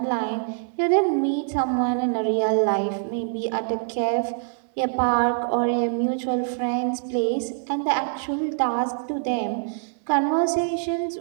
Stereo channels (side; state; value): left; silent; digital silence